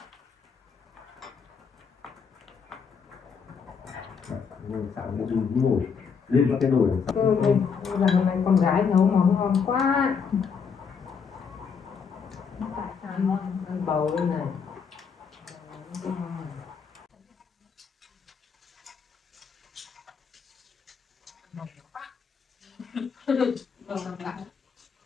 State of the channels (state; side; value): quieter; right; 6.1 dB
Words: Sáng đi ngủ lên các cái nồi. Lần này con gái nấu món ngon quá. Ăn bầu đây này.